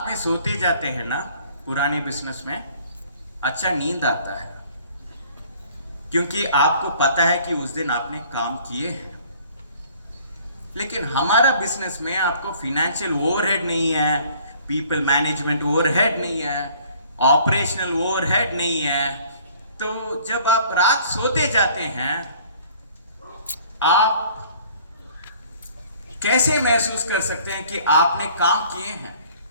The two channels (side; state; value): both; inverted; correlation -0.54